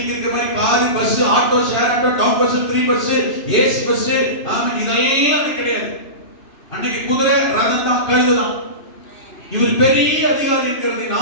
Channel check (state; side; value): late; right; 2.9 ms